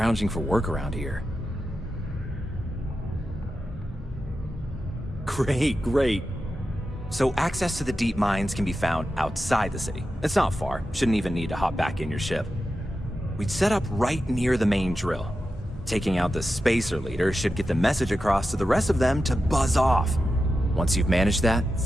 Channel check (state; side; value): normal; both; correlation 0.91